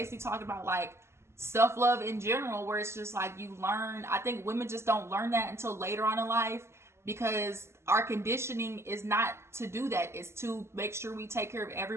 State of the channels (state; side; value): late; left; 0.13 ms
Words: talking about like self-love in general, where it's just like you learn. I think women just don't learn that until later on in life because our conditioning is not to do that. It's to make sure we take care of